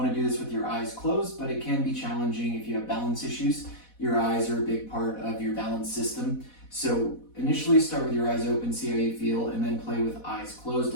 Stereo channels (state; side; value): late; right; 4.1 ms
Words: to do this with your eyes closed, but it can be challenging if you have balance issues. Your eyes are a big part of your balance system. So initially start with your eyes open, see how you feel, and then play with eyes closed